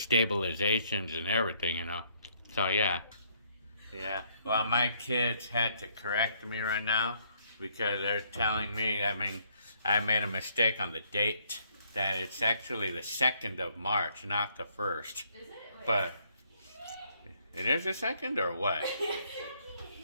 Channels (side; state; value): both; inverted; correlation -0.68